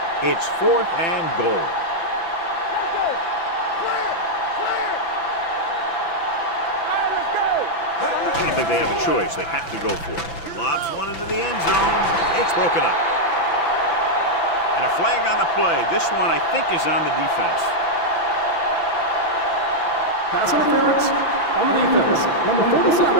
It's 4th and goal. I don't think they have a choice. They have to go for it. Lobs one into the end zone. It's broken up. And a flag on the play. This one, I think, is on the defense. Pass interference on the defense. Number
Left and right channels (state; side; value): late; right; 6.0 ms